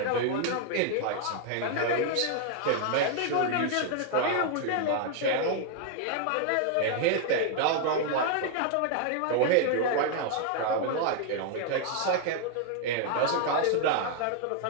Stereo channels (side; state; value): both; different; correlation 0.00